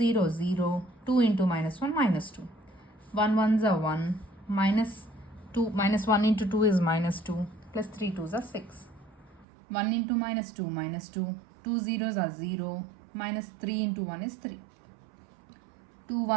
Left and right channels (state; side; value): drops out; left; at 9.5 s